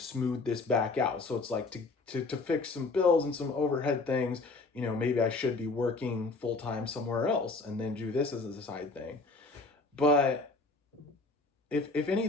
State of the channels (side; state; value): right; quieter; 3.6 dB